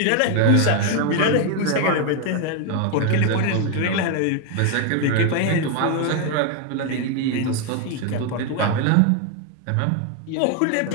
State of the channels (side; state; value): both; different; correlation 0.01